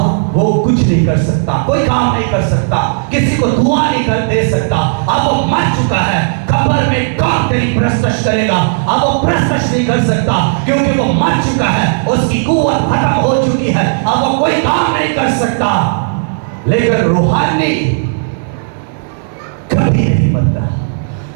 वो कुछ नहीं कर सकता, कोई काम नहीं कर सकता, किसी को दुआ नहीं कर दे सकता। अब वो मर चुका है, कब्र में कौन तेरी प्रस्तश करेगा? अब वो प्रस्तश नहीं कर सकता क्योंकि वो मर चुका है, उसकी कुव्वत खत्म हो चुकी है, अब वो कोई काम नहीं कर सकता। लेकिन रूहानी कभी नहीं मरता।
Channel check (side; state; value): left; silent; digital silence